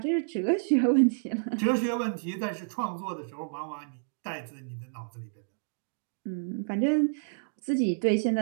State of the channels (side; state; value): left; silent; digital silence